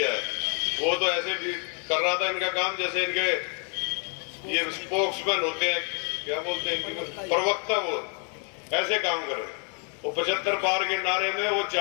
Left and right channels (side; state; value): right; quieter; 39.6 dB